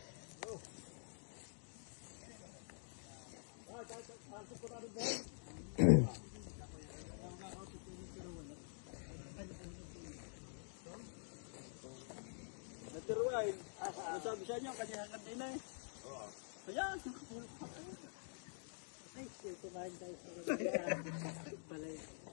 Naturuan. Ano sabi sa inyo? Kanya kanina eh. Ayan. Ay, kumain tayo sa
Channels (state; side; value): silent; right; digital silence